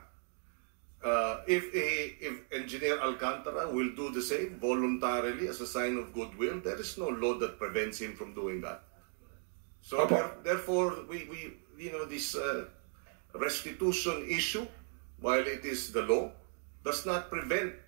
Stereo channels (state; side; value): silent; left; 54 dB below the other